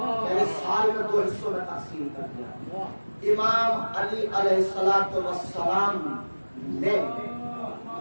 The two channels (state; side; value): inverted; both; correlation -1.00